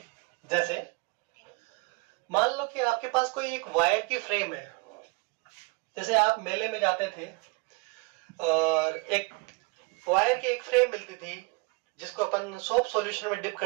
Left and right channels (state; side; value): quieter; left; 29.0 dB